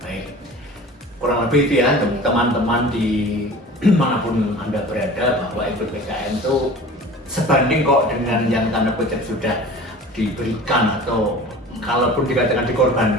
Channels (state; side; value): normal; both; correlation 0.40